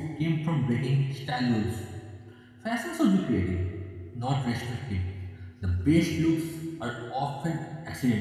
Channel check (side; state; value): both; identical; correlation 1.00